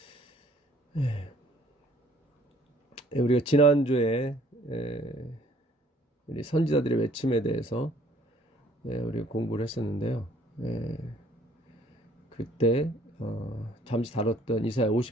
우리가 지난주에 우리 선지자들의 외침에 대해서 우리가 공부를 했었는데요. 그때 잠시 다뤘던 이사야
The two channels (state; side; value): normal; both; correlation 0.59